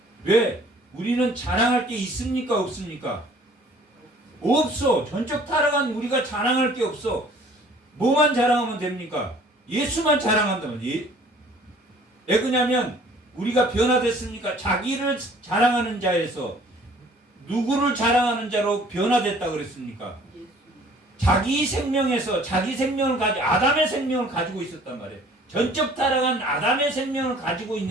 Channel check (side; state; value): both; normal; correlation 0.53